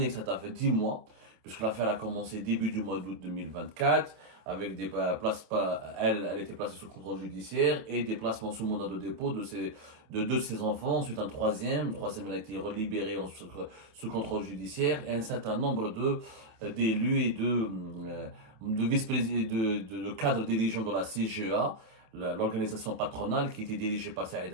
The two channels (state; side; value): late; left; 27 ms